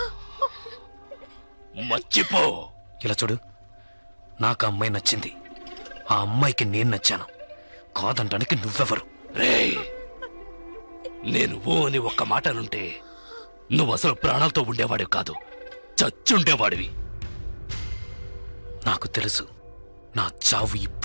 మర్చిపో. ఇలా చూడు, నాకు ఆ అమ్మాయి నచ్చింది, ఆ అమ్మాయికి నేను నచ్చాను. కాదంటానికి నువ్వెవరు? రేయ్, నేను ఓ అని ఒక్క మాట అనుంటే నువ్వు అసలు ప్రాణాలతో ఉండేవాడివి కాదు, చచ్చుండేవాడివి. నాకు తెలుసు, నా చావు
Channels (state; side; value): inverted; both; correlation -1.00